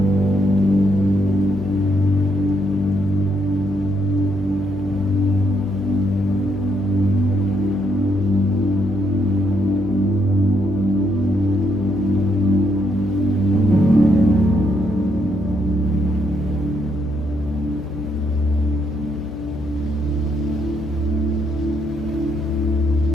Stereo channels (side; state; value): left; noise; hum, 12 dB below the sound